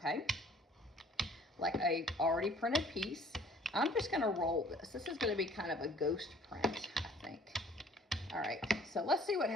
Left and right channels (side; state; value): both; normal; correlation 0.55